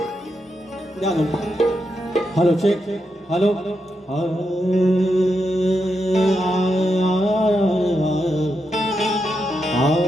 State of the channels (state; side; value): normal; both; correlation 0.84